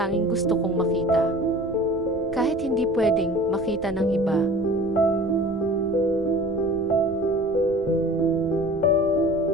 gusto kong makita. Kahit hindi pwedeng makita ng iba,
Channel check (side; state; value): right; noise; rumble, 18 dB below the sound